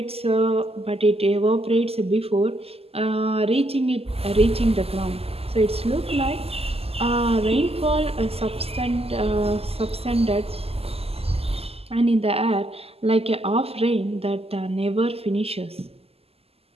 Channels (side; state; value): left; late; 0.29 ms